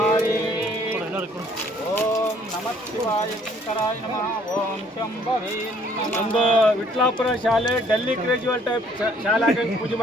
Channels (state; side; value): normal; both; correlation 0.61